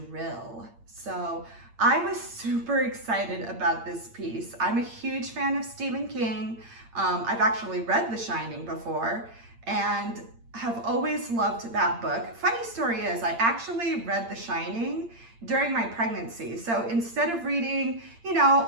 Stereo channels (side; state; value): left; late; 8.8 ms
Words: So I was super excited about this piece. I'm a huge fan of Stephen King. I've actually read The Shining before and have always loved that book. Funny story is, I actually read The Shining during my pregnancy. So instead of reading,